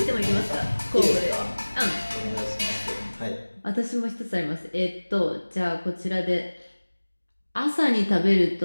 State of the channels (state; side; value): inverted; both; correlation -1.00